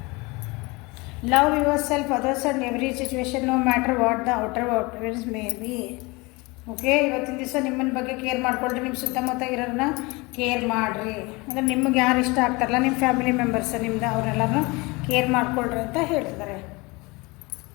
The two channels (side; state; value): right; quieter; 25.2 dB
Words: Love yourself, others and every situation, no matter what the outer appearance may be. Okay, ಇವತ್ತಿನ ದಿವಸ ನಿಮ್ಮನ್ನ ಬಗ್ಗೆ ಕೇರ್ ಮಾಡ್ಕೊಳ್ರಿ. ನಿಮ್ಮ ಸುತ್ತಮುತ್ತ ಇರೋರನ್ನ ಕೇರ್ ಮಾಡಿರಿ. ಅಂದರೆ ನಿಮಗೆ ಯಾರು ಇಷ್ಟ ಆಗ್ತಾರಲ್ಲ, ನಿಮ್ಮ ಫ್ಯಾಮಿಲಿ ಮೆಂಬರ್ಸ್ ನಿಮ್ದು, ಅವರೆಲ್ಲರೂ ಕೇರ್ ಮಾಡ್ಕೊಳ್ರಿ ಅಂತ ಹೇಳ್ತಿದ್ದಾರೆ.